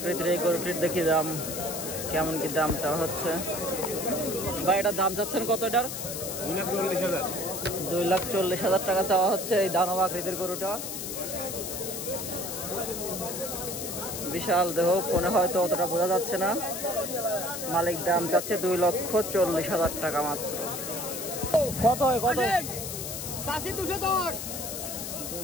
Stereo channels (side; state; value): left; noise; hiss, 6 dB below the sound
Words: এই গরুটির দেখি দাম কেমন কি দাম চাওয়া হচ্ছে। ভাই এটার দাম চাচ্ছেন কত এটার? 2,40,000। 2,40,000 টাকা চাওয়া হচ্ছে এই দানব আকৃতির গরুটা। বিশাল দেহ, ফোনে হয়তো অতটা বোঝা যাচ্ছে না। মালিক দাম চাচ্ছে 2,40,000 টাকা মাত্র। কত হয় কত? 210